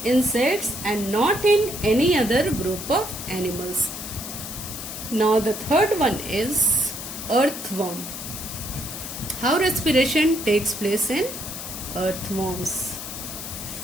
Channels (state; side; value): noise; left; hiss, 8 dB below the sound